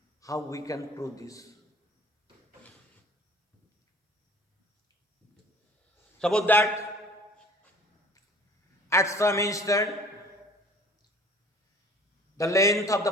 how we can prove this. Suppose that at some instant, the length of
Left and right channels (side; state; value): both; normal; correlation 0.49